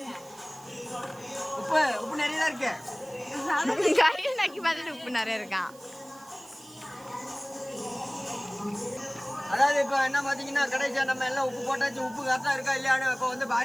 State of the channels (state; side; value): noise; right; hiss, 23 dB below the sound